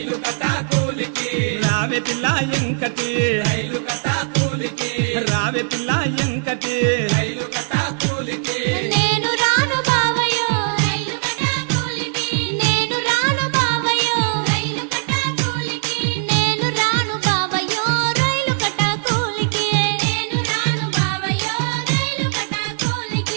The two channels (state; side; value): silent; left; digital silence